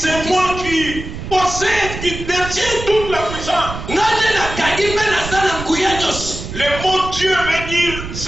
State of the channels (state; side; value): noise; right; rumble, 9 dB below the sound